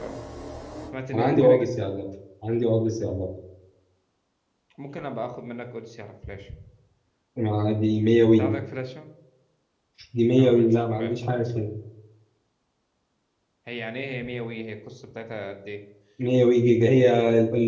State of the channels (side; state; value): both; identical; correlation 1.00